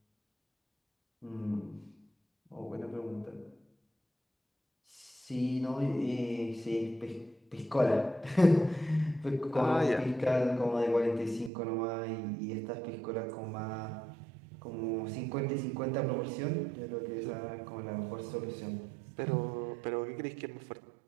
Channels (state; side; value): drops out; left; at 11.5 s